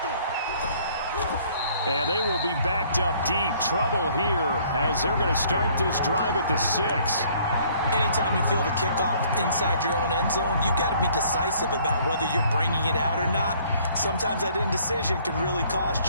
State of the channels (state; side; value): inverted; both; correlation -0.59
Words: And they will be backed up deep. Trouble here as they're going to start this drive at the 6. Anytime you feel the kickoff inside your own end zone, you've got to be decisive about whether you're bringing it out or not. Sometimes that indecision can really